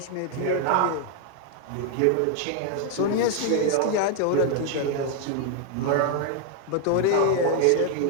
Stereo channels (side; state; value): both; different; correlation 0.00